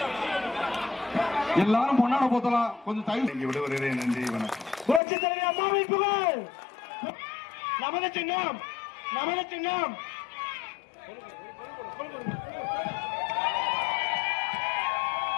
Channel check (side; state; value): right; drops out; at 5.0 s